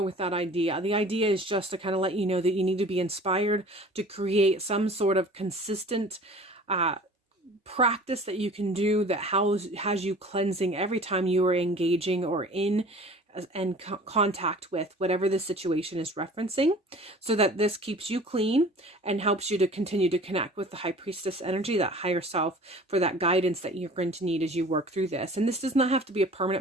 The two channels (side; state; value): both; normal; correlation 0.45